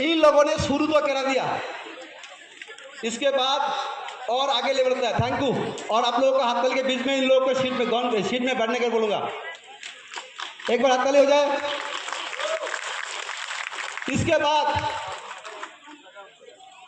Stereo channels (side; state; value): both; identical; correlation 1.00